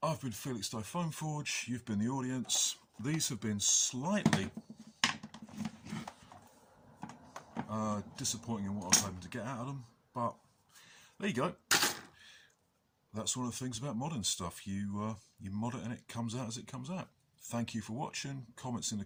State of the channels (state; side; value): identical; both; correlation 1.00